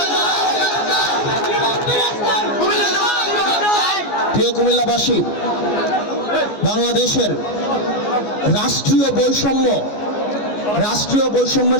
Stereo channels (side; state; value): right; late; 14 ms